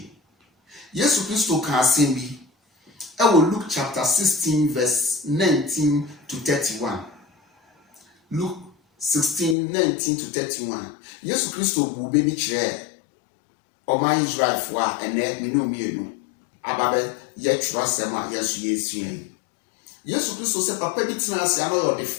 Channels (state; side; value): drops out; right; at 9.6 s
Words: Yesu Kristo kan asem bi. E wo Luke chapter 16 verse 19 to 31. Luke 16 19 to 31. Yesu Kristo bu be bi kire. O man Israel fo a ene me no mienu. Ababe ye trasema yesu yesuen Yesu Kristo se papa bi tena ase ano